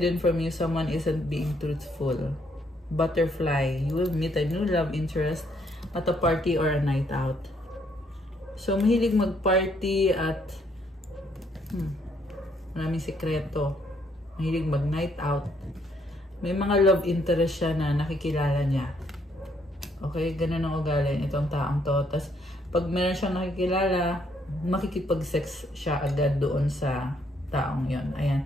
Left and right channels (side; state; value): both; normal; correlation 0.70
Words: from you, someone isn't being truthful. Butterfly, you will meet a new love interest at a party or a night out. So, mahilig mag-party at maraming sikreto. Mahilig mag-night out. May mga love interest siya na nakikilala niya. Okay? Ganun ang ugali itong taong to. Tapos, pag meron siyang nakikilala, makikipag-sex siya agad doon sa taong yon. Ayan.